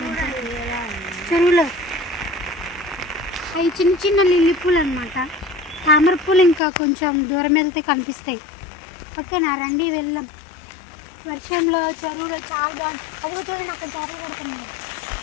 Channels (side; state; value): right; drops out; at 6.6 s